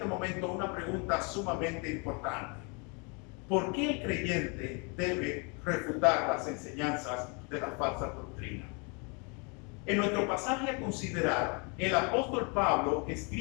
momento una pregunta sumamente importante. ¿Por qué el creyente debe refutar las enseñanzas de la falsa doctrina? En nuestro pasaje a considerar, el apóstol Pablo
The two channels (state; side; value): quieter; right; 33.3 dB